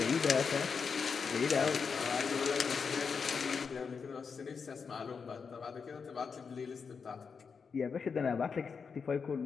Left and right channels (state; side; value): quieter; right; 5.7 dB